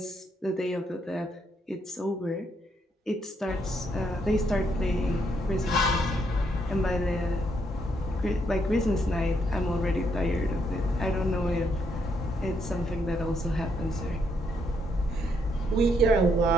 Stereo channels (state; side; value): normal; both; correlation 0.75